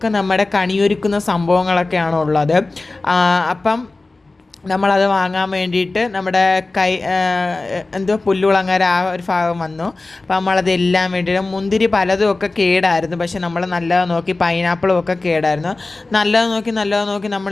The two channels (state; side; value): quieter; right; 3.3 dB